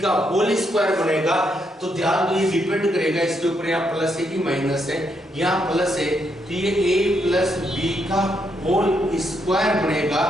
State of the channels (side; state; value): both; normal; correlation 0.78